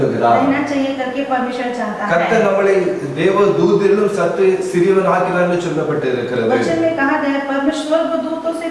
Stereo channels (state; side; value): identical; both; correlation 1.00